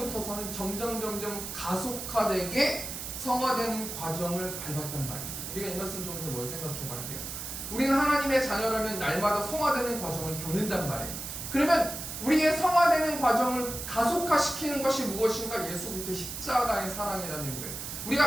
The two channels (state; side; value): noise; right; hiss, 7 dB below the sound